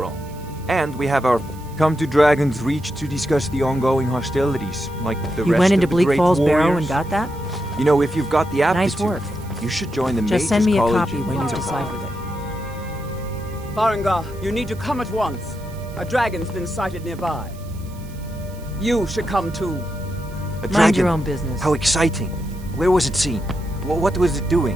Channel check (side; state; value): right; noise; hiss, 23 dB below the sound